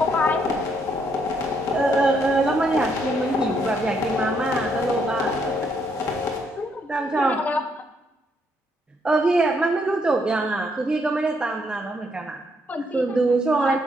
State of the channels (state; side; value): normal; both; correlation 0.73